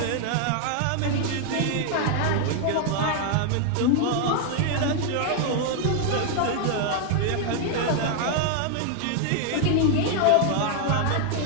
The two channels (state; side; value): different; both; correlation 0.00